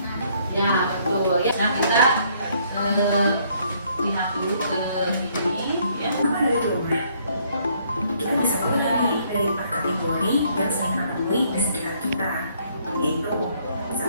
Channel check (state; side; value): inverted; both; correlation -0.66